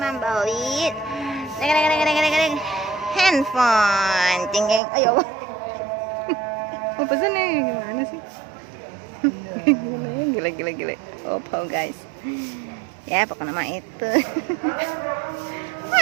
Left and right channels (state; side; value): drops out; left; at 4.8 s